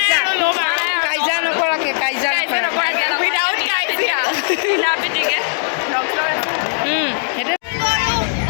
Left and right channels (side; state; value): right; silent; digital silence